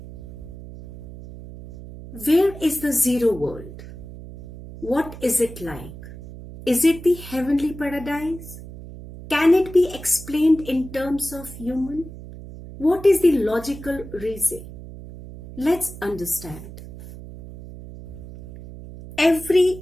Where is the zero world? What is it like? Is it the heavenly paradise? Can it be explained in terms of human? What is the logical reason? Let's understand.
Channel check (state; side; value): noise; right; hum, 14 dB below the sound